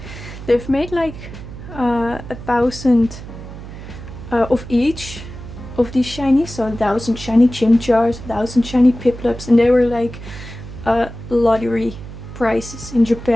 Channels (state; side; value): noise; right; hum, 13 dB below the sound